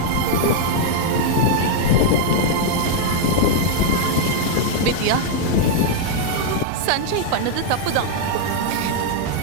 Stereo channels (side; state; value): both; different; correlation -0.01